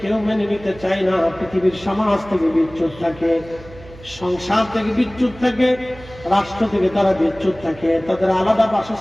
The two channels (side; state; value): right; noise; hum, 19 dB below the sound